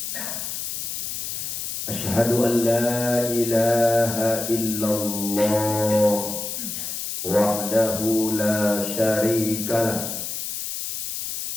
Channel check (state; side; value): noise; left; hiss, 5 dB below the sound